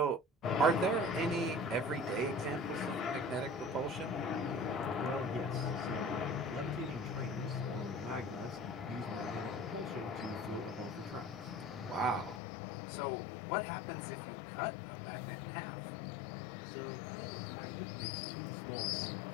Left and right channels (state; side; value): drops out; right; at 12.4 s